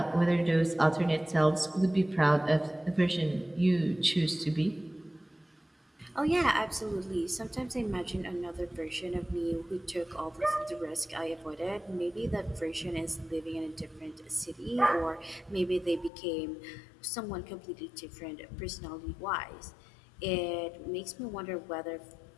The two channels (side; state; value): right; drops out; at 16.1 s